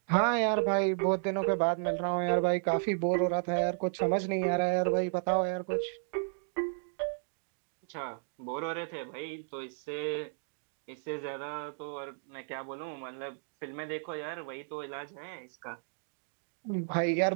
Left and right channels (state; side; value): silent; left; digital silence